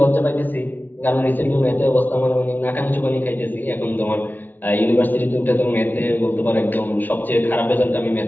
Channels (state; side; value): late; right; 0.086 ms